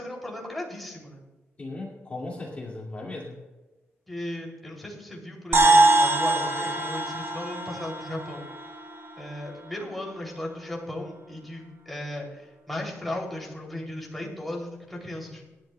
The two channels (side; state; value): both; normal; correlation 0.76